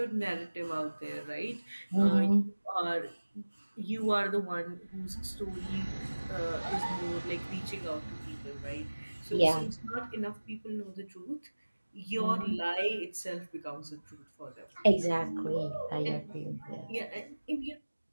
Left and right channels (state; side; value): inverted; both; correlation -1.00